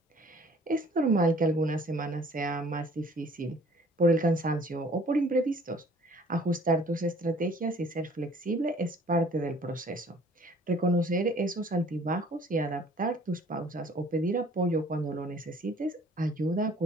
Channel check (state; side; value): normal; both; correlation 0.54